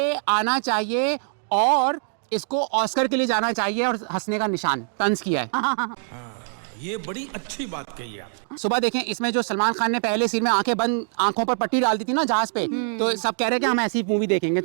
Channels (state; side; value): silent; left; digital silence